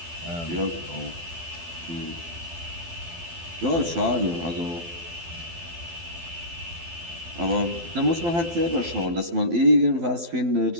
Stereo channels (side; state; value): left; late; 12 ms